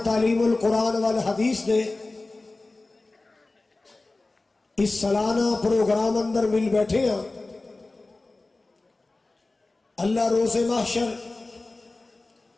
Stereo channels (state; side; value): quieter; right; 3.2 dB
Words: تعلیم القرآن والحدیث نے اس سالانہ پروگرام اندر مل بیٹھے ہیں اللہ روز محشر